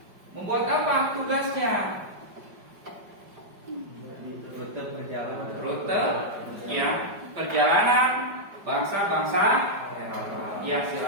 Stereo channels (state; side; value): late; left; 5.1 ms